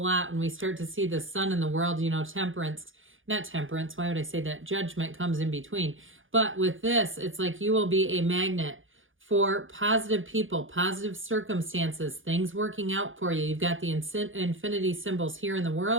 lot when we start to see the Sun in the world, not temperance, why would I say that? Judgment comes in between. But with this, it's like you will be a magnet for positive people, positive circumstances, things working out for you. You've got the infinity symbols here in the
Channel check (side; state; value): left; late; 0.58 ms